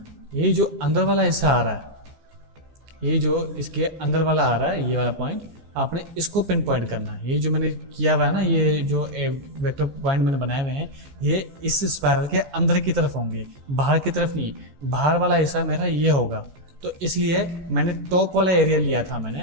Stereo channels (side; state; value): left; late; 14 ms